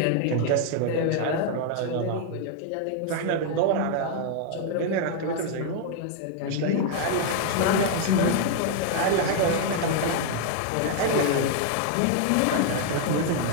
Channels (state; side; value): different; both; correlation 0.00